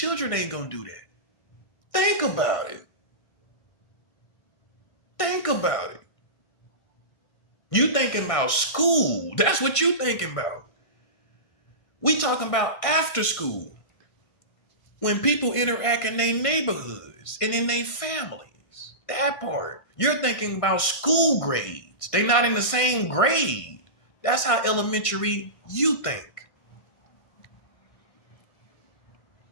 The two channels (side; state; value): right; late; 1.6 ms